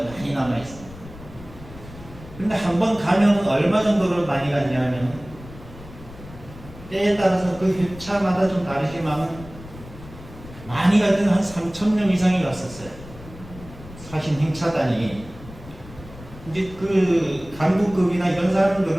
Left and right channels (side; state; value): left; noise; rumble, 17 dB below the sound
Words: 많이 남아있습니다. 근데 한 번 가면 얼마 정도를 많이 갔냐면 때에 따라서 그 회차마다 좀 다르지만 많이 갈 때는 한 3,000명 이상이 갔었어요. 사신 행차단이. 이제 그 간부급이나 이런